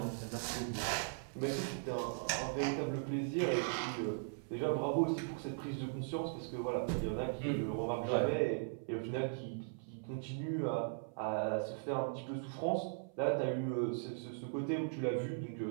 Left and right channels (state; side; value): silent; left; 52 dB below the other